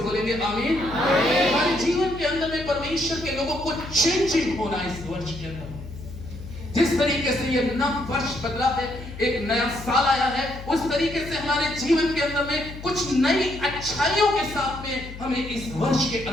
बोलेंगे आमीन? हमारे जीवन के अंदर में परमेश्वर के लोगों को चेंजिंग होना इस वर्ष के अंदर। जिस तरीके से ये नया वर्ष बदला है, एक नया साल आया है, उस तरीके से हमारे जीवन के अंदर में कुछ नई अच्छाइयों के साथ में हमें इस वर्ष के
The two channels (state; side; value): noise; left; hum, 12 dB below the sound